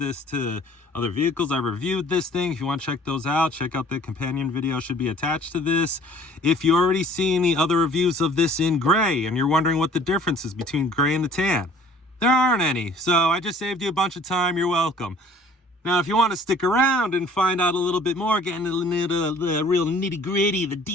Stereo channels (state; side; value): normal; both; correlation 0.53